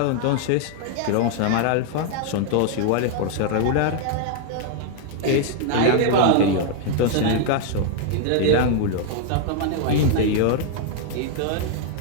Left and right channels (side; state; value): both; different; correlation 0.00